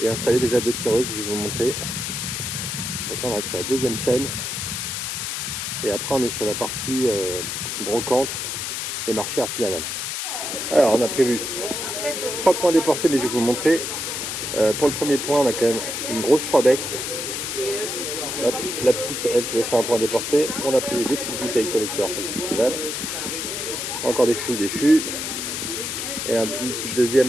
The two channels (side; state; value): left; noise; hiss, 3 dB below the sound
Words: et installer déjà 2 tireuses, je vais vous montrer. Donc là on va être sur la deuxième scène et après on est sur la partie brocante et marché artisanal. Alors on a prévu 3 points déportés mais je vais vous montrer. Pour le premier point, on a quand même une grosse 3 becs. La petite, elle, qui va faire un point déporté. On a prévu des petites bouteilles collecteurs pour le festival. Encore des fûts. Et une petite deuxième